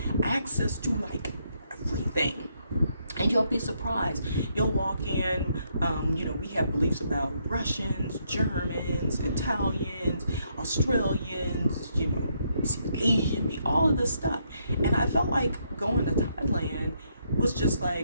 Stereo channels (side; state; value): both; inverted; correlation -0.75